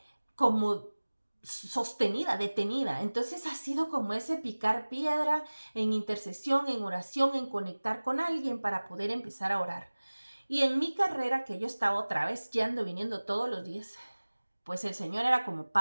como sostenida, detenida. Entonces ha sido como ese picar piedra en intercesión, en oración, en conectar con alguien para poder empezar a orar. Y en mi carrera, que yo estaba otra vez yendo, viniendo todos los días, pues el Señor era como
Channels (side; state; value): both; inverted; correlation -1.00